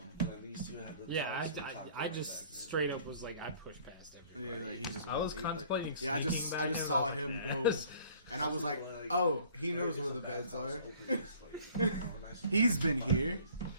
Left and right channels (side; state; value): both; inverted; correlation -0.53